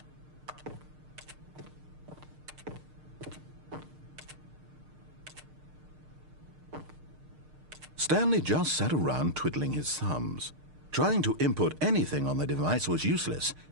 Stanley just sat around twiddling his thumbs. Trying to input anything on the device was useless,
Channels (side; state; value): left; late; 6.6 ms